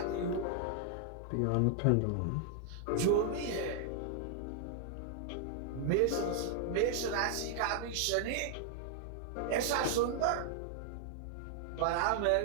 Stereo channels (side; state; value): both; different; correlation 0.00